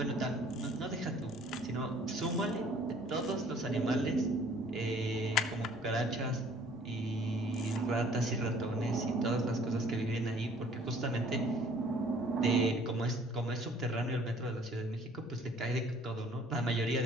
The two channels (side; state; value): both; normal; correlation 0.55